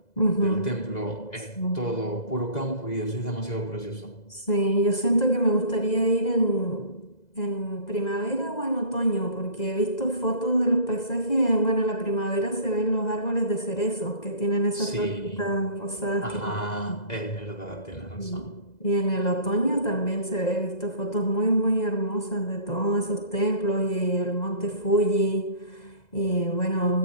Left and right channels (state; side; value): late; right; 2.0 ms